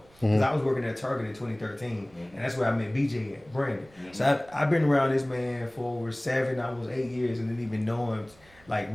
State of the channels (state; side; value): noise; right; rumble, 28 dB below the sound